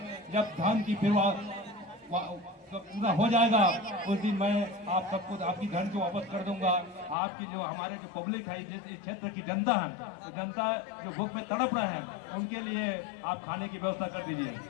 जब धान की पूरा हो जाएगा, उस दिन मैं आप सबको आपकी धन को वापस कर दूंगा। आपकी जो हमारे जो पब्लिक है, इस क्षेत्र की जनता है, तो जनता जो भूख में तड़प रहे हैं, उनके लिए आप खाने की व्यवस्था कर दीजिए।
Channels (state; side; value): drops out; right; at 7.2 s